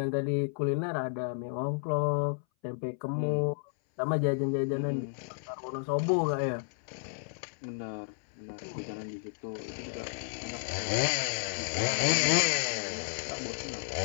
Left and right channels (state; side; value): silent; right; 56 dB below the other